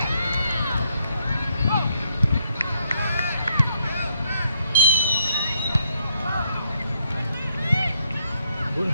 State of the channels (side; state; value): both; inverted; correlation -0.74